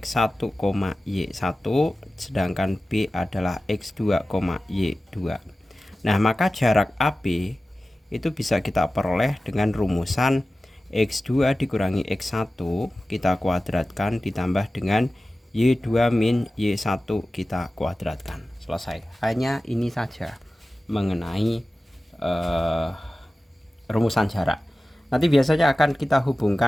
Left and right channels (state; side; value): normal; both; correlation 0.95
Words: y1, sedangkan B adalah x2, y2. Nah, maka jarak AB itu bisa kita peroleh dengan rumusan X2 dikurangi X1 kita kuadratkan ditambah dengan Y2 min Y1 kita kuadratkan. Selesai. Hanya ini saja mengenai rumusan jarak. Nanti biasanya akan kita